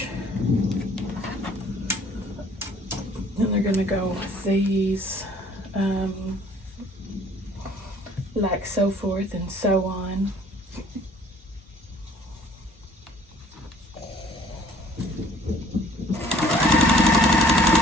And they're gonna go with these, like so forth and so on.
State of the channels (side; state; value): both; normal; correlation 0.56